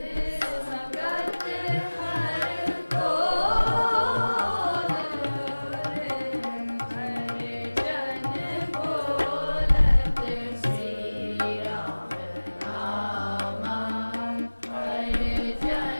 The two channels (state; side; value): inverted; both; correlation -1.00